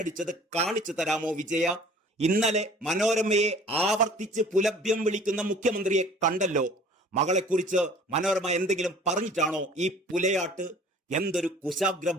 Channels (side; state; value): both; normal; correlation 0.49